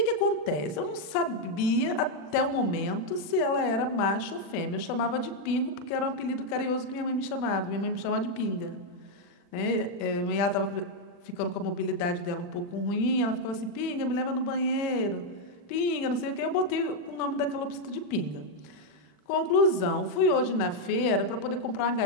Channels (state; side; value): late; right; 40 ms